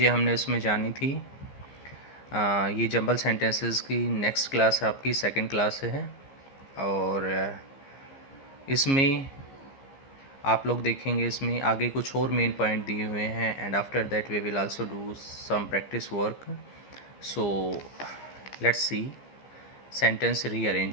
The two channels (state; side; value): late; right; 15 ms